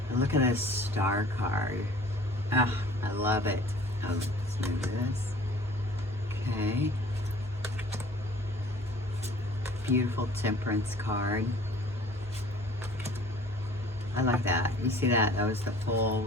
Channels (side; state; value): both; normal; correlation 0.49